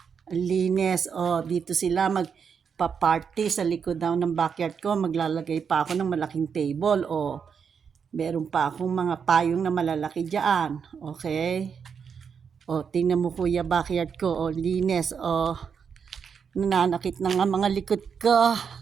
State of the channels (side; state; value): left; quieter; 6.6 dB